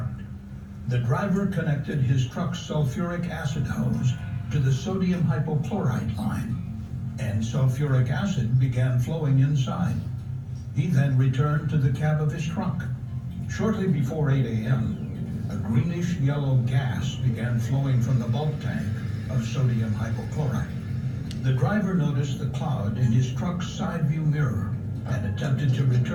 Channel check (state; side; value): identical; both; correlation 1.00